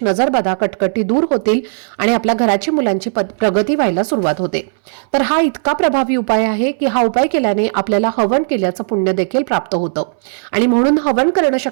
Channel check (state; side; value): silent; left; 64 dB below the other